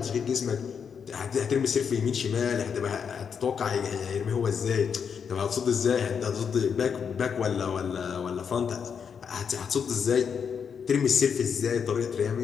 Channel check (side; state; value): right; quieter; 6.8 dB